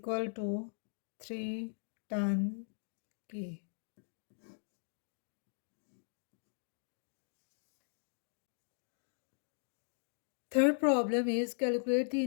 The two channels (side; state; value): right; silent; digital silence